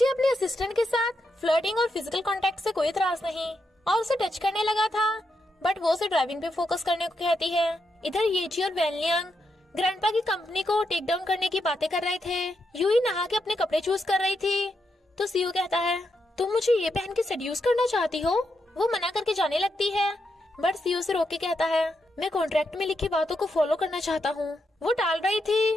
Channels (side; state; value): both; normal; correlation 0.83